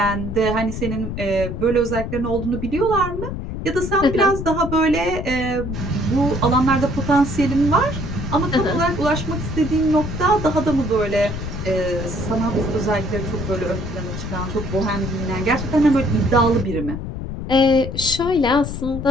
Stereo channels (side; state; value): left; noise; rumble, 6 dB below the sound